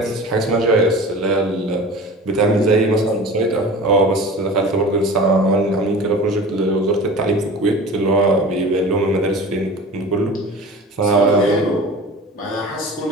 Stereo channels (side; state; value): both; normal; correlation 0.37